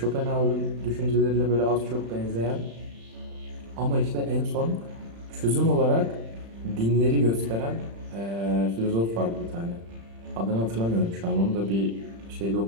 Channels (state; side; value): late; left; 35 ms